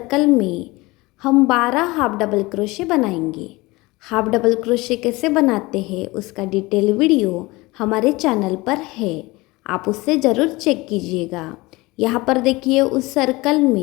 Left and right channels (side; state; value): right; quieter; 22.1 dB